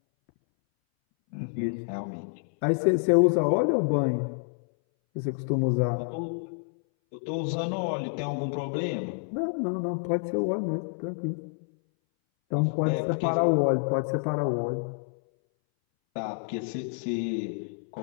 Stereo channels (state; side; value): silent; right; 59 dB below the other